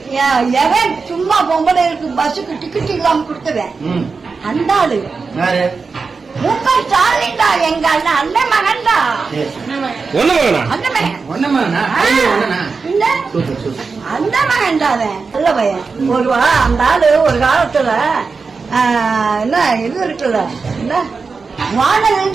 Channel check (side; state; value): left; quieter; 4.7 dB